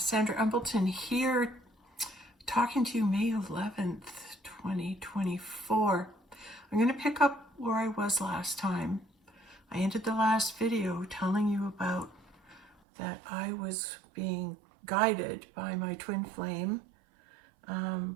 Embleton here, talking to you May 11th, 2024. I'm going to pick up where I was last time. I ended the last video telling you about that I was being guided by my twin flame,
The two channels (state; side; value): drops out; left; at 12.8 s